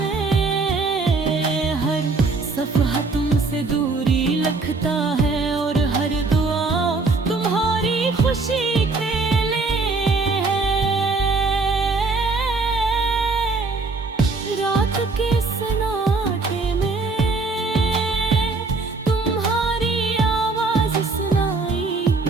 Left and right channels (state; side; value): quieter; left; 3.9 dB